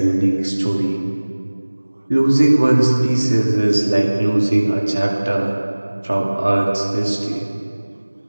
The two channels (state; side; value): inverted; both; correlation -1.00